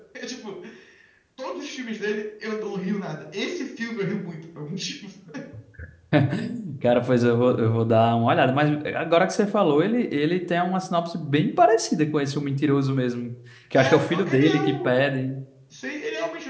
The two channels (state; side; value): identical; both; correlation 1.00